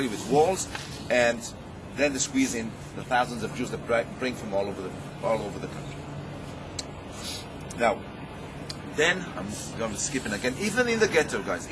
with walls, and then they squeeze in the thousands of Jews that bring from all over the country. Now, then I'm going to skip it again. Even in the ghetto, guys,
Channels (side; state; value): both; identical; correlation 1.00